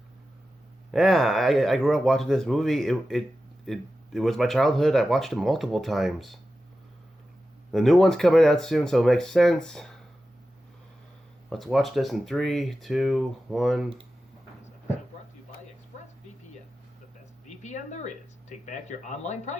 Yeah, I grew up watching this movie. It was my childhood. I watched it multiple times. The new one's coming out soon, so it makes sense. Let's watch this in 3, 2, 1... Brought to you by ExpressVPN, the best VPN there is. Take back your online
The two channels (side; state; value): both; normal; correlation 0.93